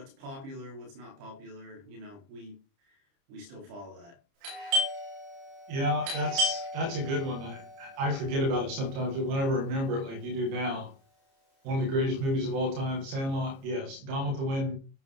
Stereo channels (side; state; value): left; late; 29 ms